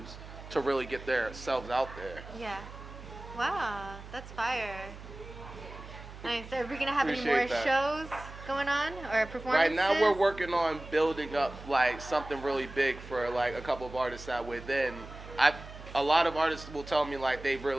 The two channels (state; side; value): noise; right; hum, 14 dB below the sound